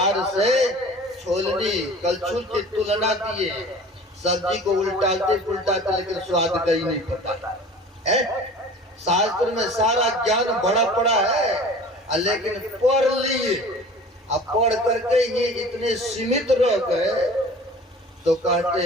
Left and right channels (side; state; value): both; normal; correlation 0.43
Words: से छोलनी कलछुल की तुलना दिए, सब्जी को उल्टाते पुलटाते लेकिन स्वाद का ही नहीं पता है। शास्त्र में सारा ज्ञान बड़ा पड़ा है, लेकिन पढ़ लिए, अब पढ़ करके ये इतने सीमित रह गए, तो कहते